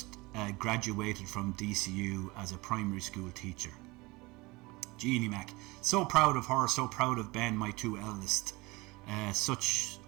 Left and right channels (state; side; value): quieter; left; 23.1 dB